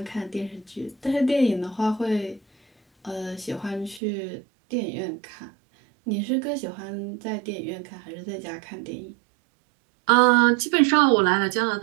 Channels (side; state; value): left; drops out; at 4.0 s